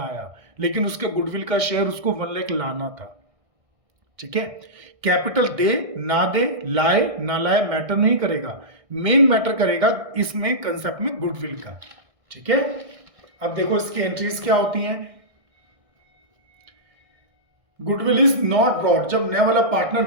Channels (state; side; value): late; left; 1.6 ms